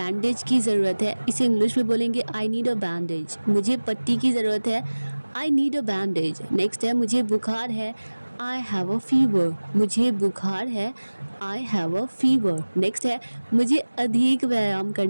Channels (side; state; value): both; inverted; correlation -1.00